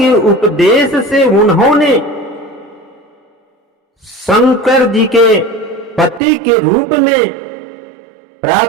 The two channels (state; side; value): drops out; left; at 6.2 s